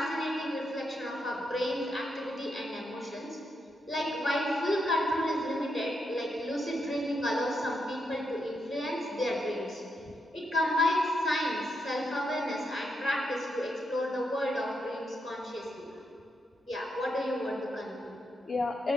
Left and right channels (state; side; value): normal; both; correlation 0.82